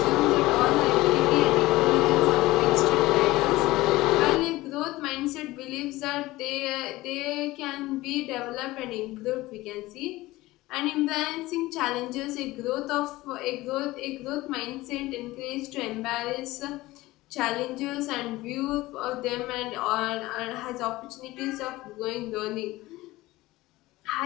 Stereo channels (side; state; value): right; quieter; 18.7 dB